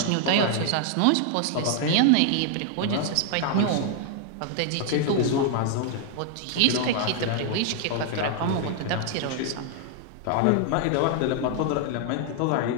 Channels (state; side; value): different; both; correlation 0.00